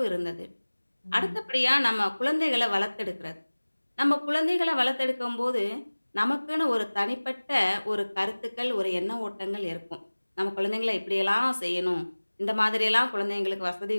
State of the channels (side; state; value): both; inverted; correlation -1.00